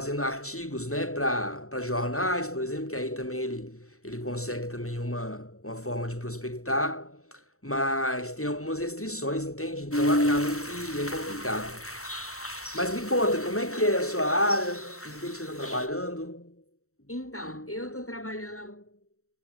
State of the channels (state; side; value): late; right; 0.64 ms